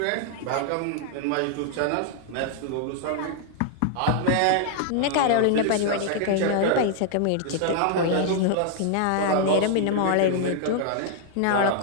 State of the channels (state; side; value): different; both; correlation -0.01